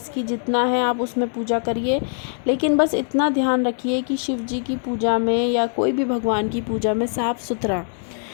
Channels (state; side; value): silent; right; 59 dB below the other